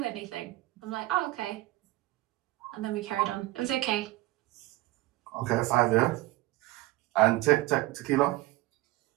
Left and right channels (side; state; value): left; quieter; 18.2 dB